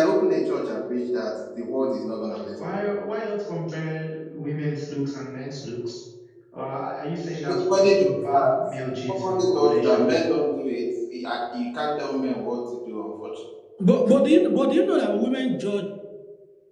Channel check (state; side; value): identical; both; correlation 1.00